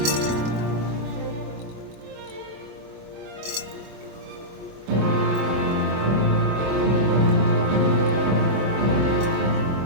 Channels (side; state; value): left; late; 23 ms